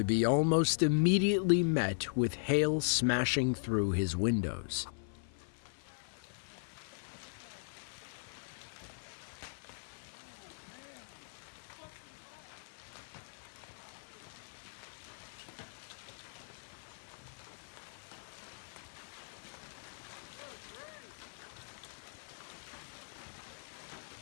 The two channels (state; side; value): silent; right; 52 dB below the other